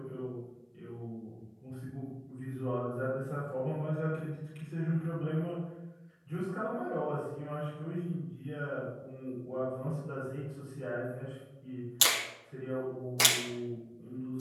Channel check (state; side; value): identical; both; correlation 1.00